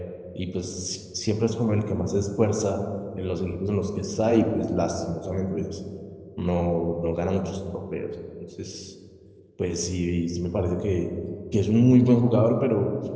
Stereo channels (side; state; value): both; identical; correlation 1.00